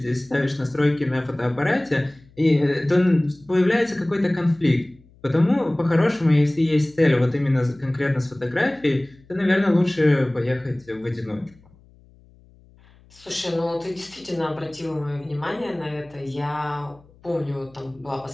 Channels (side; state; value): left; noise; hum, 28 dB below the sound